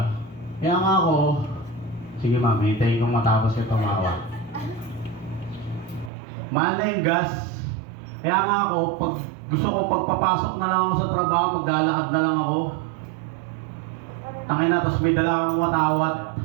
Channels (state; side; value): drops out; left; at 6.1 s